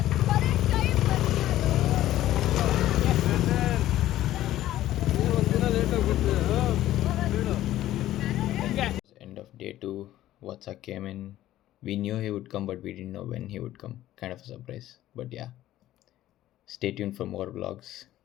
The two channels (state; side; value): quieter; right; 13.9 dB